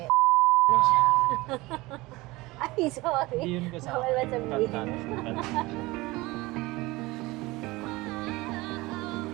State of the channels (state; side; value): quieter; left; 21.1 dB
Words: na siya. Ay, sorry. Hindi yun kasama. Bawal ba sabihin?